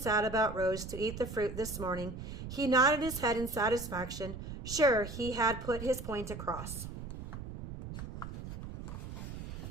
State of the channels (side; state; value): right; noise; rumble, 9 dB below the sound